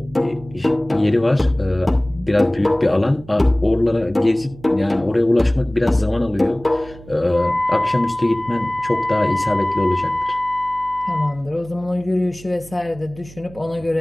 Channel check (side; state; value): right; noise; hum, 20 dB below the sound